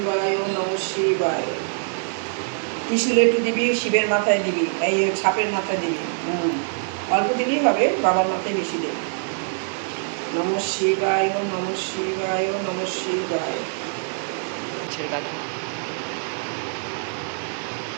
নমঃ শিবায়। ত্রিশূল একটু দিবি, শিবের মাথায় দিবি, এই সাপের মাথায় দিবি। অল্প দিলেই হবে, বাবার মাথায় বেশি দেবে। নমঃ শিবায়, নমঃ শিবায়, নমঃ শিবায়।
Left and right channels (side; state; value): left; silent; digital silence